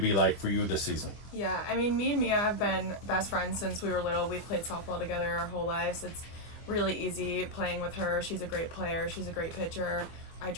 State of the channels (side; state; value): right; late; 24 ms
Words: like for you this season. Yeah, I mean, me and Mia have been best friends since we were little. We've played softball together our whole lives. It's really easy playing with her. She's a great player. She's a great pitcher. I